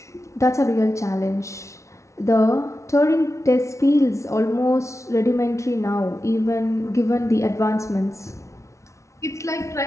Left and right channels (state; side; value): late; right; 0.14 ms